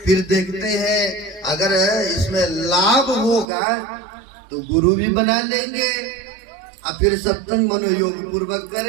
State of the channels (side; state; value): left; drops out; at 3.5 s